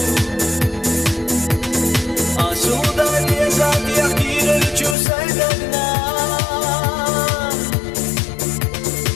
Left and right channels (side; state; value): right; drops out; at 5.0 s